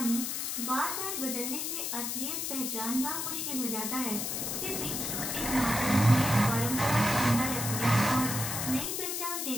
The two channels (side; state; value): left; noise; hiss, 2 dB below the sound